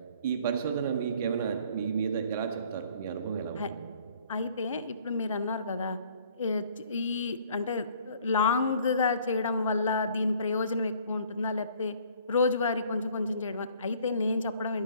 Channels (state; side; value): inverted; both; correlation -0.57